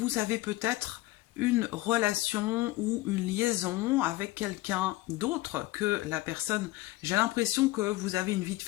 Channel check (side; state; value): right; quieter; 18.5 dB